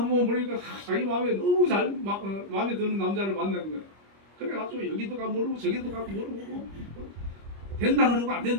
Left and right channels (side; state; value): left; late; 25 ms